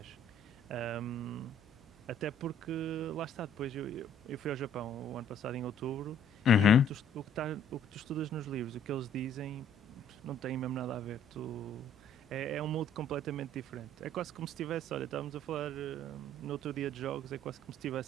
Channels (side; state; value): right; noise; hum, 26 dB below the sound